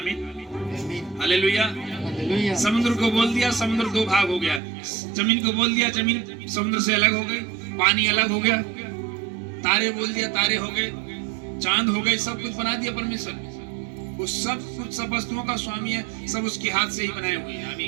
हालेलुया। समुद्र को बोल दिया, समुद्र दो भाग हो गया। जमीन को बोल दिया, जमीन समुद्र से अलग हो गई, पानी अलग हो गया। तारे बोल दिया, तारे हो गए, चांद हो गए, सब कुछ बना दिया परमेश्वर। वो सब कुछ, सब वस्तुओं का स्वामी है, सब उसके हाथ से ही बनाए हुए हैं।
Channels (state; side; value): drops out; left; at 4.6 s